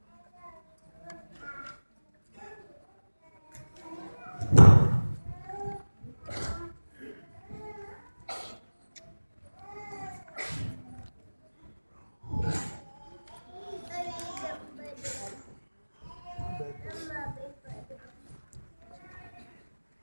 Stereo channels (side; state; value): both; inverted; correlation -1.00